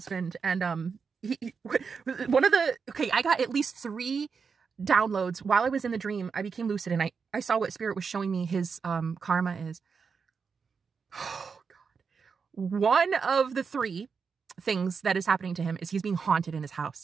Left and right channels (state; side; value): quieter; left; 5.6 dB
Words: and I got at least 3 downloads while I was in the dream. I became lucid and I saw what spirit was showing me his karma is. Oh God. One of the 3 things that is happening to him is he's being haunted in his